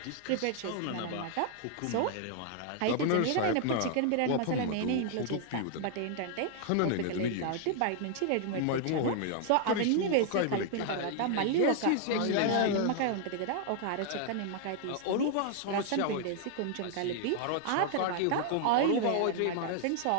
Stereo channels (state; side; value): different; both; correlation 0.00